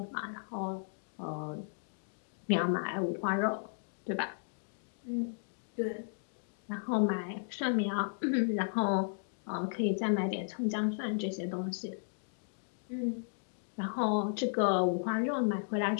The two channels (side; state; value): right; silent; digital silence